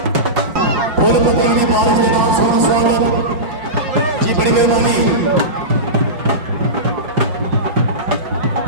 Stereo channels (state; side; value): late; left; 5.6 ms